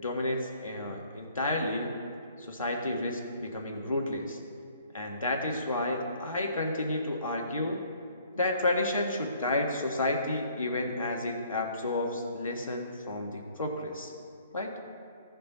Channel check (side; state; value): both; inverted; correlation -0.59